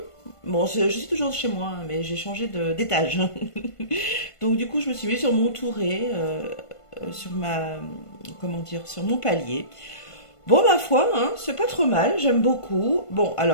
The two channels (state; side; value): late; right; 1.5 ms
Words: Bon, je suis toujours chez moi, hein, mais j'ai changé d'étage. Donc du coup, je me suis mis sur mon touret, sur ma, comment dire, sur mon palier. Bon, ma foi, hein, c'est pas trop mal, j'aime beaucoup. Bon,